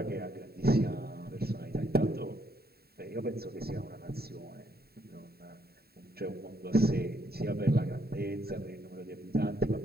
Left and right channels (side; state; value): left; late; 0.45 ms